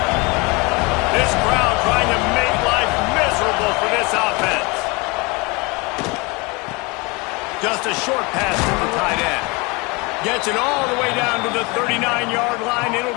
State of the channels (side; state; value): right; quieter; 27.1 dB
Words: This crowd trying to make life miserable for this offense. Just a short pass to the tight end. Gets it all the way down to the 39-yard line. It'll